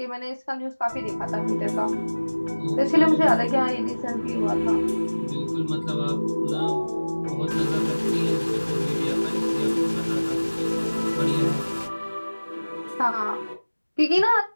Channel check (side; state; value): both; inverted; correlation -1.00